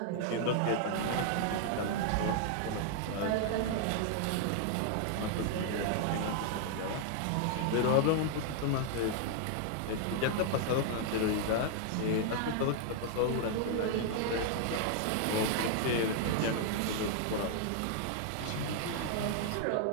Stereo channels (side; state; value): both; different; correlation 0.00